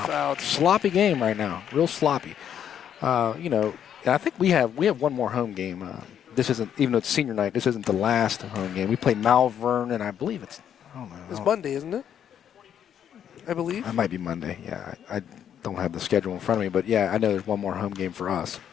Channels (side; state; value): right; quieter; 9.2 dB